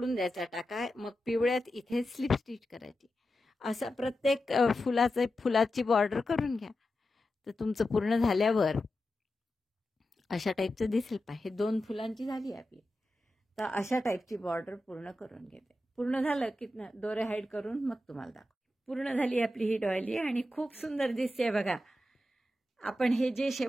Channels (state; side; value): normal; both; correlation 0.90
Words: द्यायचा टाका. मग पिवळ्यात इथे स्लिप स्टिच करायची. असं प्रत्येक फुलाची बॉर्डर करून घ्या. तर तुमचं पूर्ण झाल्यावर अशा टाईपचं दिसेल. हे 2 फुलांची झाली आपली. तर अशा टाईपची बॉर्डर पूर्ण करून घेते. पूर्ण झालं की दोरे हाईड करून मग तुम्हाला दाखव. पूर्ण झाली आपली ही डॉयली आणि खूप सुंदर दिसते बघा. आपण हे जे